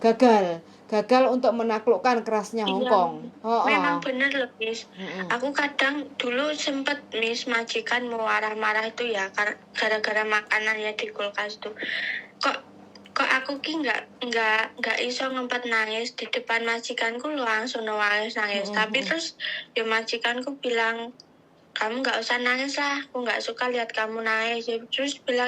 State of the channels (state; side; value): identical; both; correlation 1.00